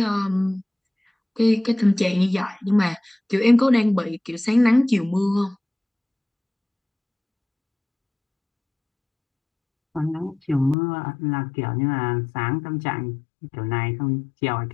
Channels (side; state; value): right; drops out; at 10.8 s